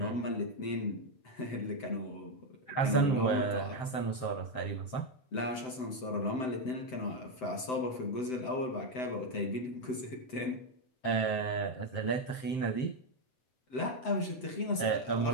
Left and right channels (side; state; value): right; late; 7.8 ms